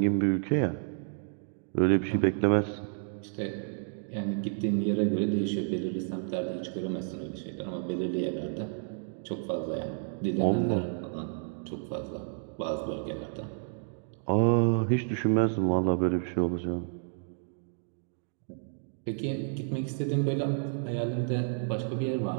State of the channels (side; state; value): left; silent; digital silence